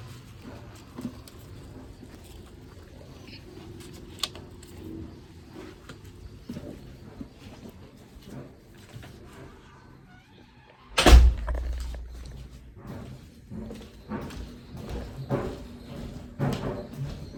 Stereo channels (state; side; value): identical; both; correlation 1.00